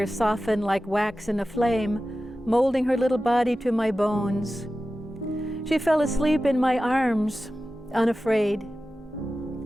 soften like wax in a flame, molding her little body to my bones. She fell asleep in my arms, unafraid.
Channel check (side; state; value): both; normal; correlation 0.94